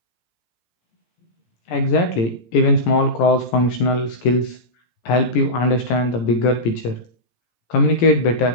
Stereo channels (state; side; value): late; right; 17 ms